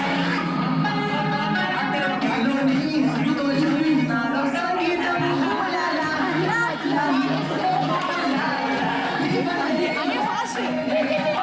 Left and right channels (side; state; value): both; identical; correlation 1.00